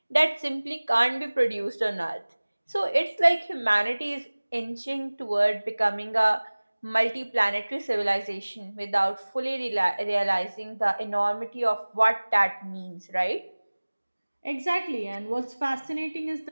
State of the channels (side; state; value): both; inverted; correlation -1.00